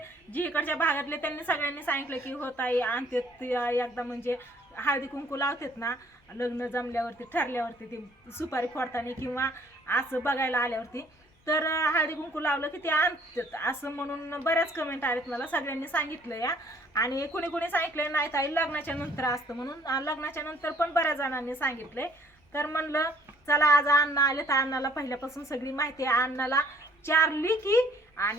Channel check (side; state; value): both; normal; correlation 0.60